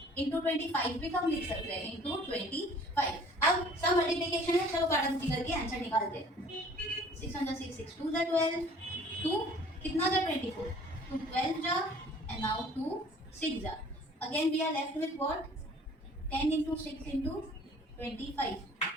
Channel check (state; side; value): normal; both; correlation 0.52